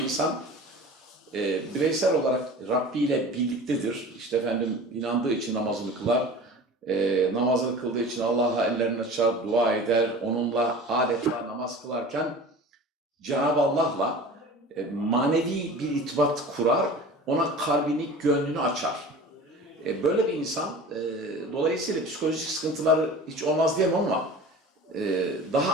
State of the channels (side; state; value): both; normal; correlation 0.38